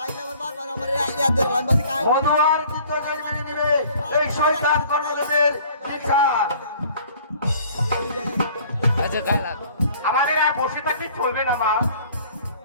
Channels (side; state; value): both; inverted; correlation -0.52